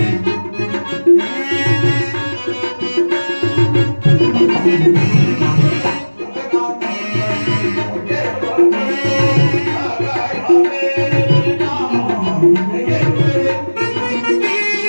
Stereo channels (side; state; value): both; inverted; correlation -1.00